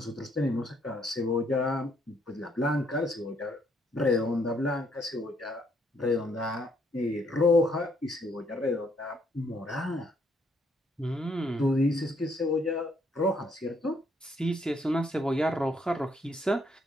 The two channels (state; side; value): normal; both; correlation 0.70